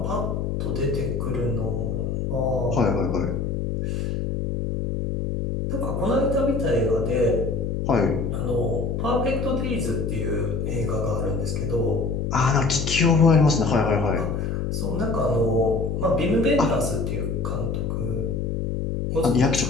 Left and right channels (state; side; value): noise; left; hum, 1 dB below the sound